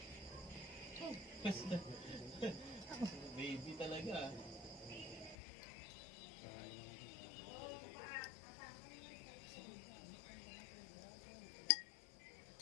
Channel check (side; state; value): right; drops out; at 5.4 s